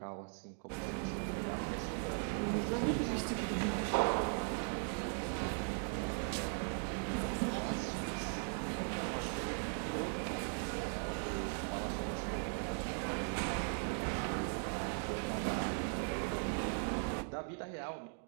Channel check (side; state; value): left; silent; 52 dB below the other